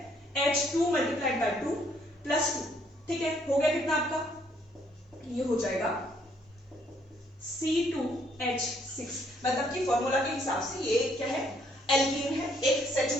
H2 × 2 + 2, ठीक है। हो गया कितना आपका? ये हो जाएगा C2H6। मतलब कि फॉर्मूला के हिसाब से ये क्या है? एल्कीन है, एक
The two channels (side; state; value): both; normal; correlation 0.68